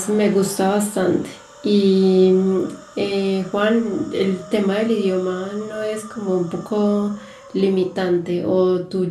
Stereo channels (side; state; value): both; identical; correlation 1.00